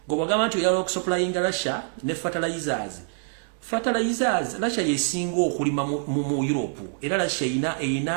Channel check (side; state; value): left; silent; digital silence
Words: gobagamba nti oyala okusupplyinga Russia ne fertilizers Russia yesinga okulima mu Europe era Russia